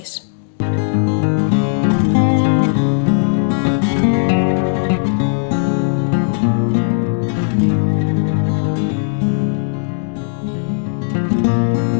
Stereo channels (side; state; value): right; silent; 60 dB below the other